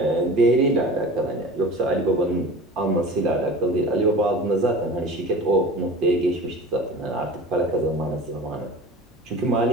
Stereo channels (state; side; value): normal; both; correlation 0.37